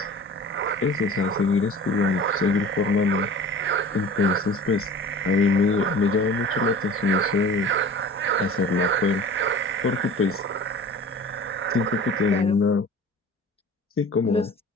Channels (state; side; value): normal; both; correlation 0.41